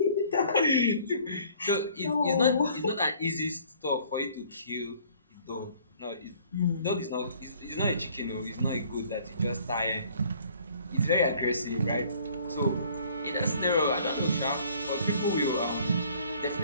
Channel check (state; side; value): inverted; both; correlation -0.56